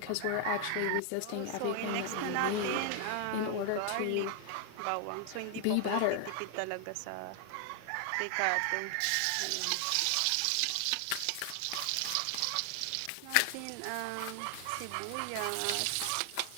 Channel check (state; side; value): different; both; correlation 0.00